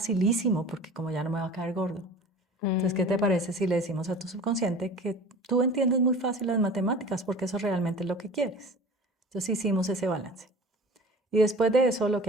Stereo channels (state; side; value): normal; both; correlation 0.41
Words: porque como ya no me va a caer gordo. Entonces, ¿qué te Mm. parece si le decimos a tu subconsciente que tú entiendes muy fácil las matemáticas porque eso realmente es lo que quieres? Entonces hicimos ese balance. Y después de eso lo